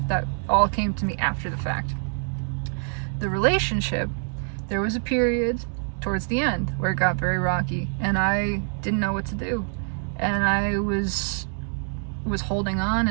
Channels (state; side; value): silent; left; 61 dB below the other